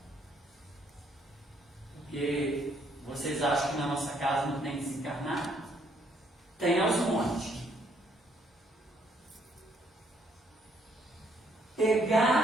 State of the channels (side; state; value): both; normal; correlation 0.69